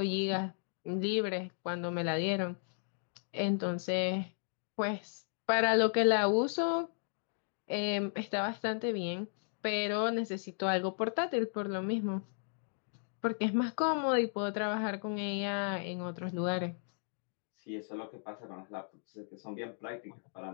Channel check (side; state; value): right; silent; digital silence